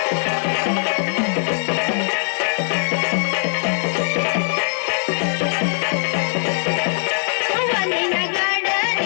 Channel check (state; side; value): silent; right; digital silence